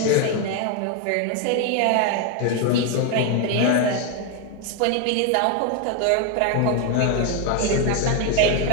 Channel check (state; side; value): different; both; correlation 0.01